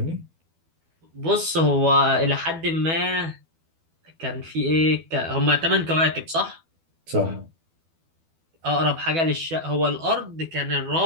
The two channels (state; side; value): late; left; 12 ms